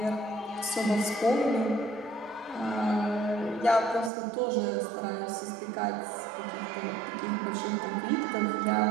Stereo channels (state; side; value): drops out; left; at 4.1 s